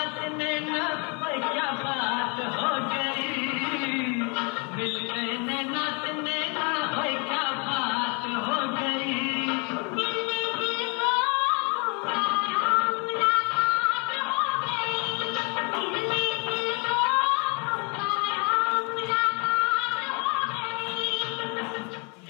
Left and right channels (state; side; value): quieter; right; 33.4 dB